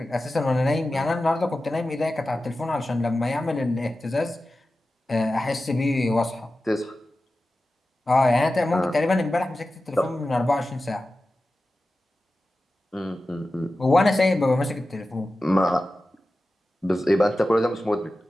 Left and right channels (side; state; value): both; normal; correlation 0.94